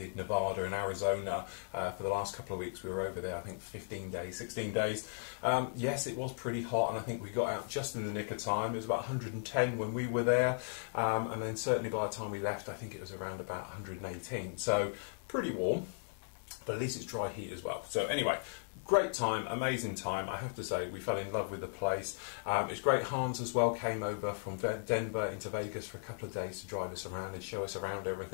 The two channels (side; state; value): right; silent; digital silence